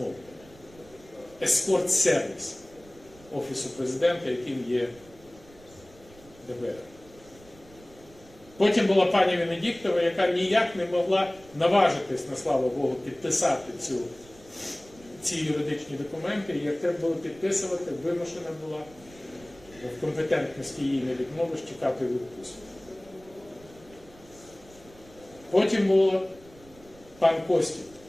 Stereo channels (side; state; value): right; noise; rumble, 24 dB below the sound